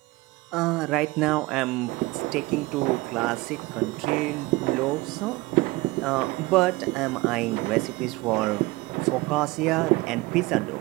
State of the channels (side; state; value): left; quieter; 21.0 dB